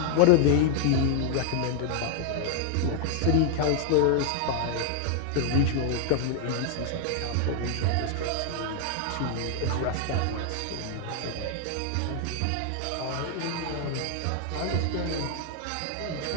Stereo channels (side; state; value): both; different; correlation 0.00